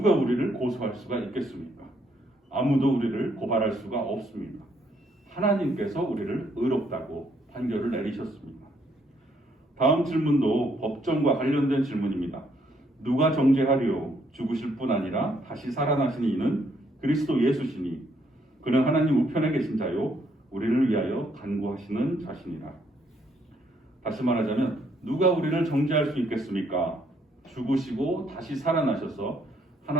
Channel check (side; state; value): both; normal; correlation 0.71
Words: 우리를 고소할 수가 있겠습니까? 아무도 우리를 고발할 수가 없습니다. 하나님께서 우리를 의롭다고 판결을 내리셨습니다. 다음 질문도 법정과 관련된 질문입니다. 누가 정죄하리요? 죽으실 뿐 아니라 다시 살아나신 이는 그리스도 예수시니 그는 하나님 우편에 계신 자요 우리를 위하여 간구하시는 자신이라. 다시 말하자면 누가 우리를 정죄할 수 있겠습니까? 죽으시고 다시 살아나셔서